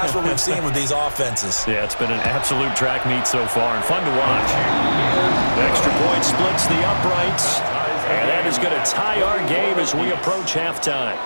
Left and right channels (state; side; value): inverted; both; correlation -1.00